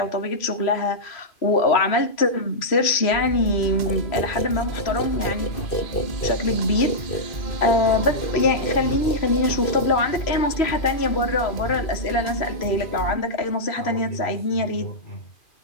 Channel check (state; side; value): late; right; 2.5 ms